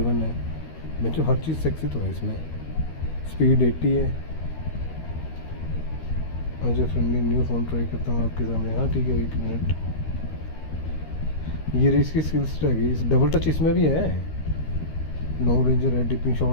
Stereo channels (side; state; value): right; late; 13 ms